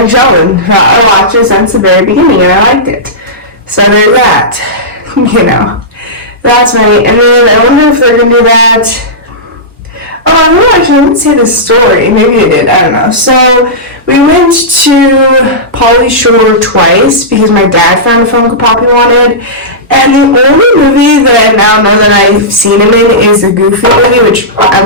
Sheldon. I watched it since the very beginning, and I liked it. So there's that, you know. That's right. And then I wonder if they're going to do that. Oh, I don't know, actually, I didn't see the story. Maybe they did, I don't know. So we went to Pauly Shore twice because my dad found a funko pop he wanted. And the only movie that I now know that I've seen him in is the Goofy movie, which I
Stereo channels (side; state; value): both; normal; correlation -0.15